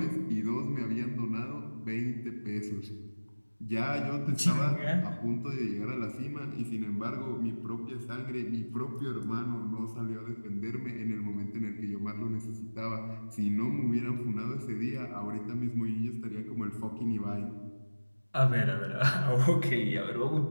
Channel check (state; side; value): inverted; both; correlation -1.00